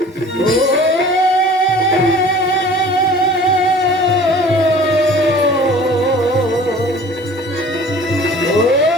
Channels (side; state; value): both; normal; correlation 0.46